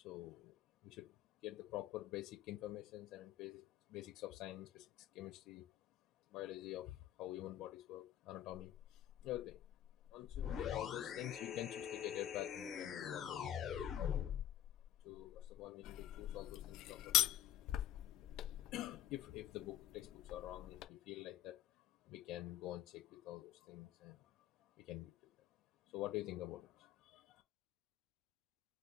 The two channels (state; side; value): quieter; right; 11.9 dB